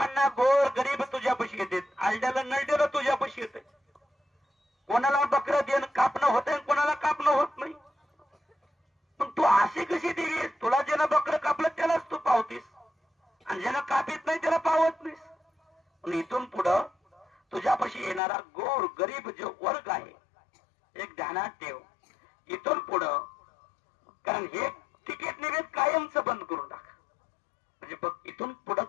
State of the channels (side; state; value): right; drops out; at 18.2 s